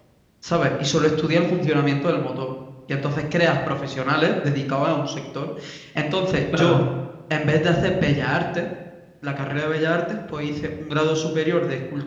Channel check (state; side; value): identical; both; correlation 1.00